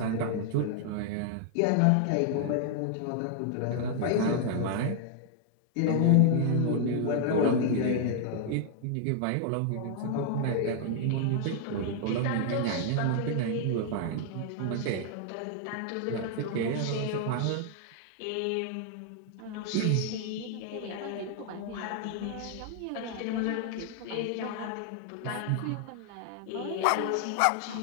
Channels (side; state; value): both; different; correlation 0.00